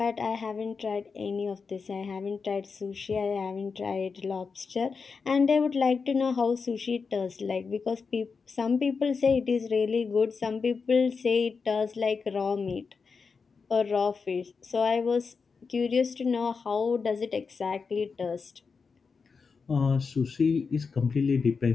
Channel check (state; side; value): quieter; right; 5.1 dB